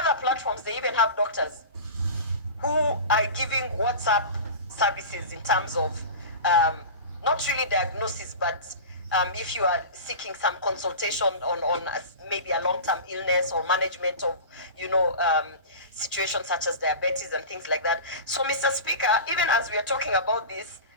platforms, they even have doctors who are giving WhatsApp services in terms of not really diagnosis, but if you are seeking some consultation on maybe a long-term illness or management of, situations such as diabetes and things like that. So, Mr. Speaker, even as we are talking about this,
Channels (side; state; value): both; inverted; correlation -0.32